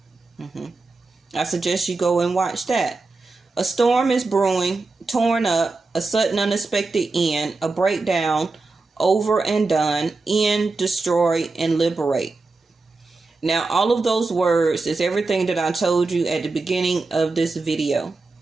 I suggest you go and watch that. A storm is brewing, torn up, a sudden unexpected end, a breakdown, over and done, end, destroy, and liberate. Now, all of those words is everything that I told you at the beginning of this video.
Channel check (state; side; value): quieter; left; 3.6 dB